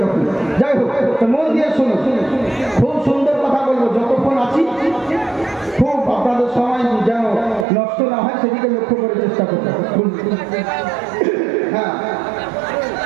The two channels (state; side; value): drops out; left; at 7.7 s